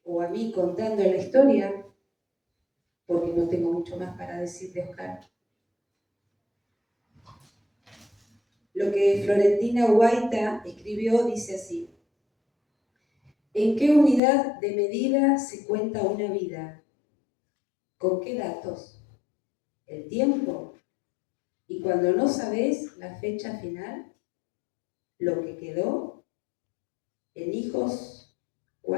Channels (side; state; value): right; drops out; at 14.2 s